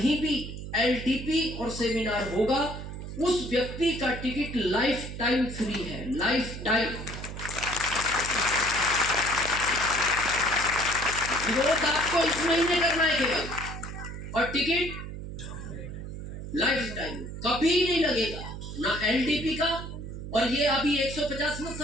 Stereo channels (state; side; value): noise; right; hum, 9 dB below the sound